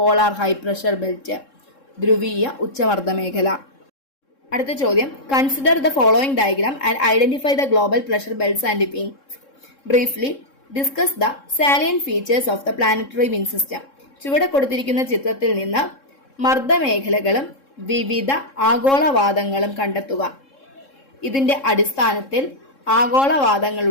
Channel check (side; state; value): right; late; 3.7 ms